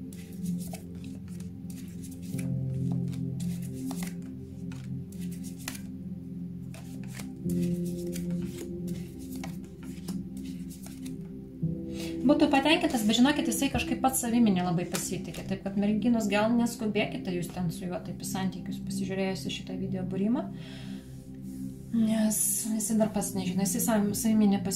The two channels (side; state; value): both; identical; correlation 1.00